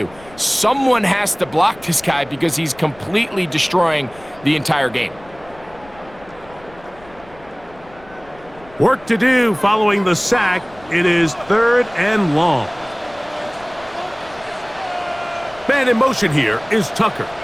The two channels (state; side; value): noise; left; rumble, 23 dB below the sound